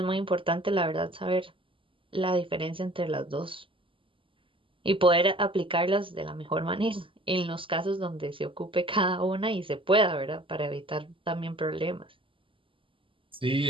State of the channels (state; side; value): late; left; 0.25 ms